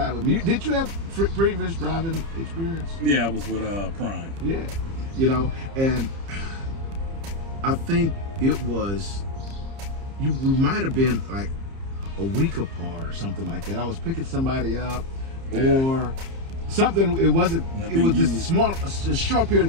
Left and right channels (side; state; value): left; late; 30 ms